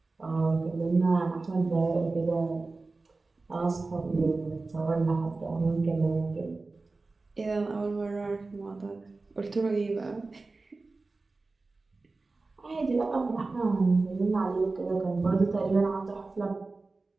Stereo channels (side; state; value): left; quieter; 3.6 dB